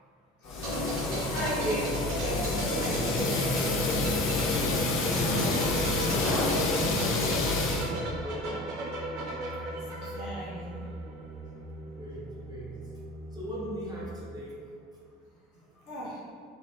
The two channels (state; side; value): normal; both; correlation 0.38